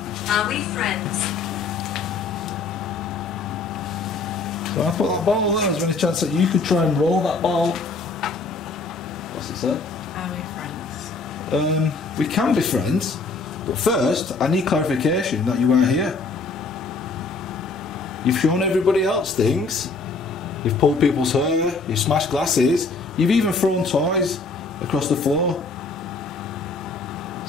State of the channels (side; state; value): right; quieter; 3.9 dB